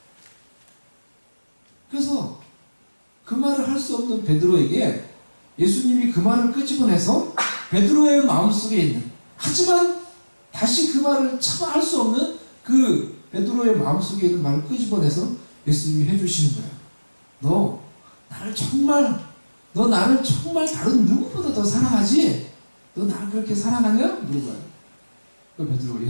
그래서 그 말을 할 수 없는 베드로에게 예수님이 그 말을 끄집어내서 베드로의 마음속에 있는, 하지만 다시 그 말을 차마 할 수 없는 그 베드로의 마음속에 있는 말을 끄집어내서 예수님이 해주시는 거예요. 너 나를 정말 다른 누구보다 더 사랑하지? 너 나를 그렇게 사랑하냐? 물어봐요. 그 베드로가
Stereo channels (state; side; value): inverted; both; correlation -1.00